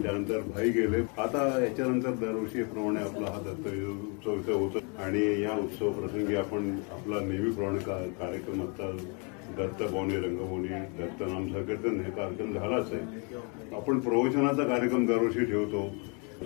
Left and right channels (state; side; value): quieter; right; 35.1 dB